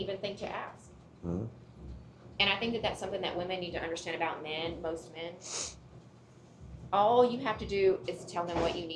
think to ask. Mhm. And I think that that's something that women need to understand about men, most men. All you have to do is tell them what you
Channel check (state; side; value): identical; both; correlation 1.00